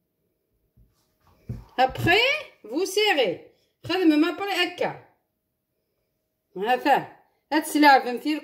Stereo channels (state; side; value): identical; both; correlation 1.00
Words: après vous serrez خدمه ما بري هكا. هذا هاد السلعه فهمتي